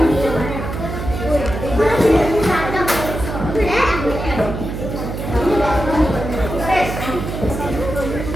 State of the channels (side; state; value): right; noise; hum, 6 dB below the sound